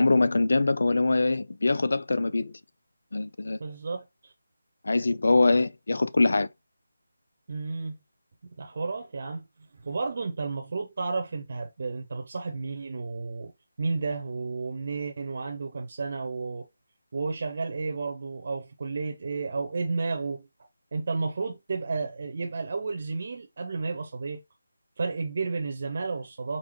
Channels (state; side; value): inverted; both; correlation -0.93